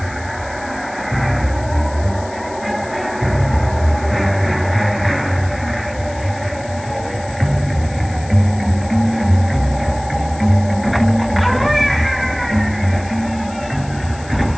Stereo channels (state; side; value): noise; left; hiss, 20 dB below the sound